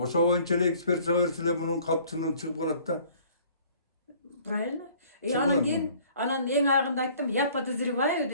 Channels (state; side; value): inverted; both; correlation -0.54